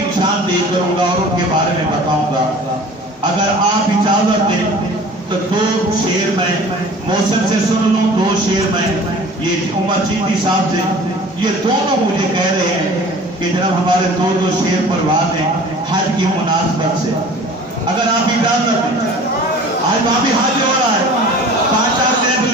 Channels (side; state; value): both; normal; correlation 0.45